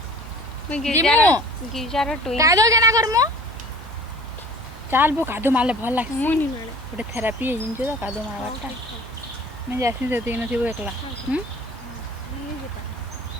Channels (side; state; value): both; normal; correlation 0.46